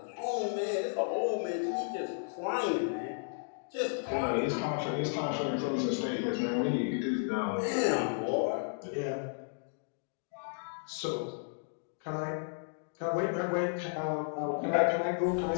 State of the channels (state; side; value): silent; right; digital silence